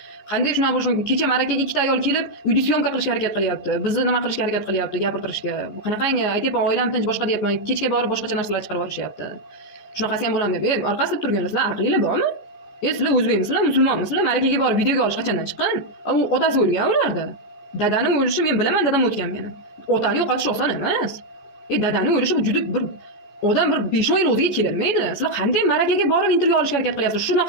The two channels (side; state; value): right; late; 14 ms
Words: Qanday shunaqa bo'lishi mumkin? Kecha marakaga ikkita ayol kelib uyda syomka qilishga harakat qilyapti, bizni nima qilishga harakat qilyapti, gapirtirishga. Bu qanaqangi? Aytyapman, oilam tinch, boshqa deyapman, kechga borib boshqacha narsalar chiqarib yuborishyapti. Shunaqasi ham bo'ladimi deb. Orqasida turganlar, sizlar aqlinglar bormi? Sizlar o'zbekmisizlar, musulmonmisizlar? Marakaga borib videoga olish qachondan chiqqan? U otasi o'lgan ularda. Dadani o'lishi men bilaman, dadam o'tgan meni. Otani yo'qotish oson emas. Dadani o'lishi bu juda bir odam bir 5-10 yil o'ziga kelolmaydi. Sizlar qanday marakaga borib intervyu olishga harakat qilyapsiz?